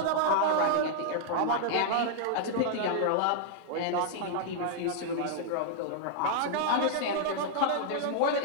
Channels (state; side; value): different; both; correlation -0.01